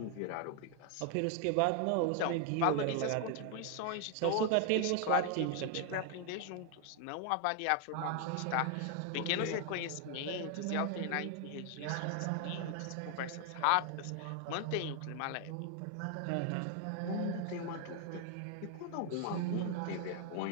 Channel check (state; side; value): different; both; correlation 0.00